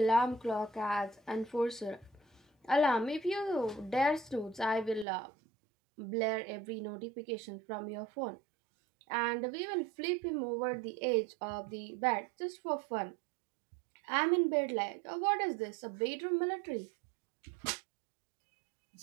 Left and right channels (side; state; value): left; drops out; at 5.1 s